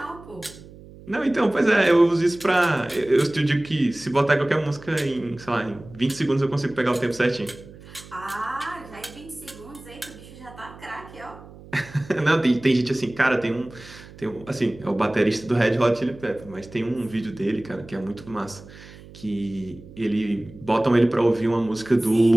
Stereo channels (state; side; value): noise; right; hum, 19 dB below the sound